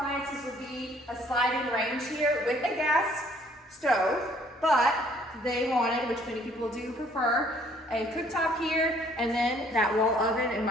would be a sliding range here with a gas stove, but they wanted, which many people do prefer, a cooktop here, and then that wall oven and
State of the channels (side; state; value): both; normal; correlation 0.61